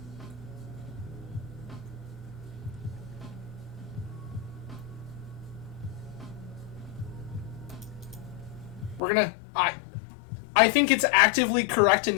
We're gonna... I think it's actively correct in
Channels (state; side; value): drops out; right; at 9.0 s